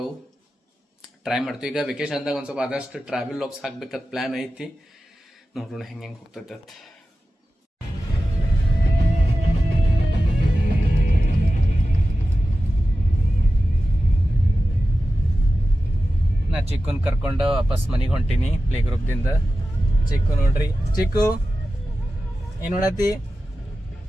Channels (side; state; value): both; normal; correlation 0.93